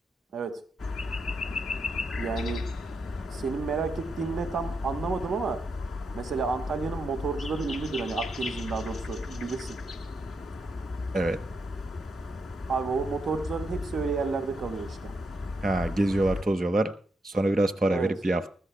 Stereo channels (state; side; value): normal; both; correlation 0.82